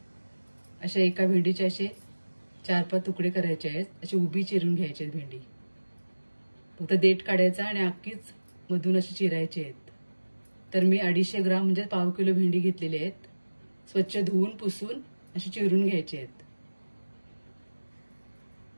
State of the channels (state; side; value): inverted; both; correlation -1.00